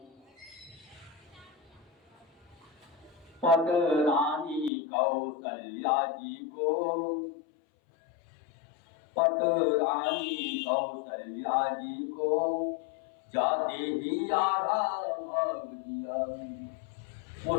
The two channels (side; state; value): right; drops out; at 4.7 s